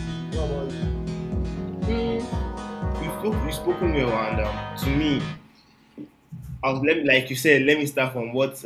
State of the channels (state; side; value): identical; both; correlation 1.00